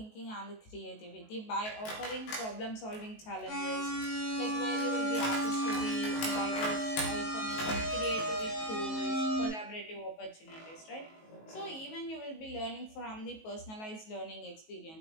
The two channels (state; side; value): late; right; 19 ms